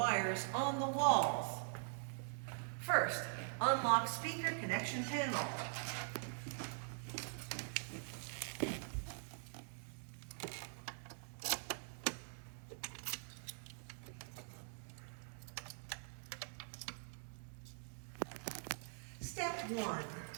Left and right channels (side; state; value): left; silent; digital silence